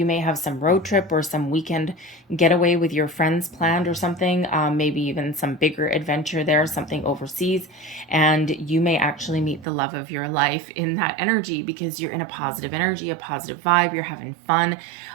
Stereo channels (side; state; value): left; drops out; at 9.7 s